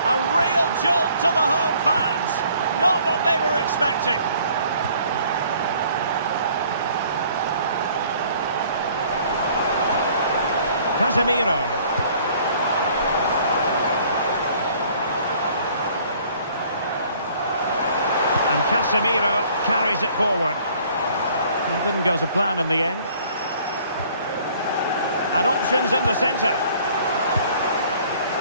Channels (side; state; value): both; inverted; correlation -0.57